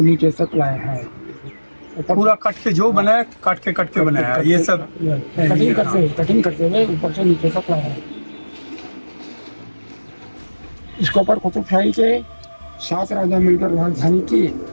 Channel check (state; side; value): inverted; both; correlation -1.00